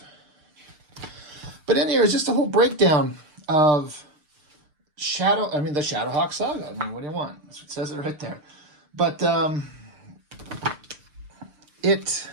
But in here is just a whole breakdown of the Shadowhawk saga. I mean, what do you want? That's what it says it right there. But it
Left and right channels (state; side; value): late; left; 6.7 ms